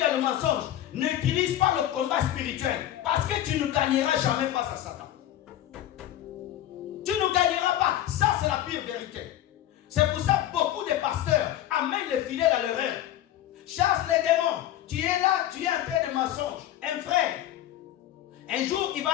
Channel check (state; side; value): quieter; right; 12.6 dB